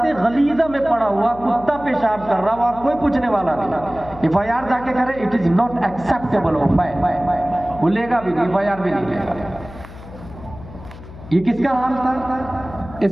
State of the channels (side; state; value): left; noise; hum, 16 dB below the sound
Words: गलीजा में पड़ा हुआ कुत्ता पेशाब कर रहा हुआ, कोई पूछने वाला नहीं। FIR जाके करे, it is not acceptable of वो लेगा भी नहीं, FIR भी नहीं लेगा। ये किसका हाल था?